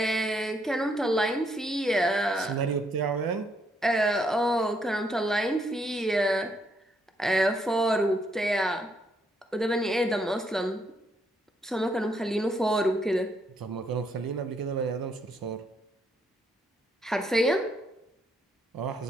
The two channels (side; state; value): both; normal; correlation 0.74